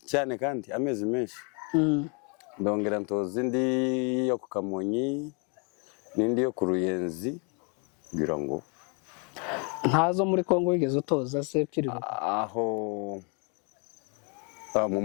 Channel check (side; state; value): right; quieter; 35.6 dB